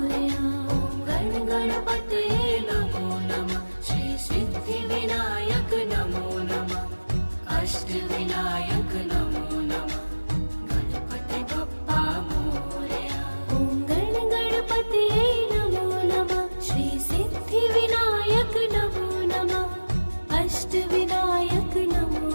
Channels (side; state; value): both; inverted; correlation -1.00